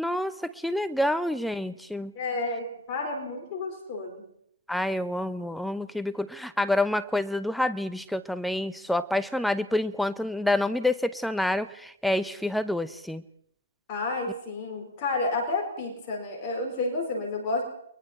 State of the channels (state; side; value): normal; both; correlation 0.61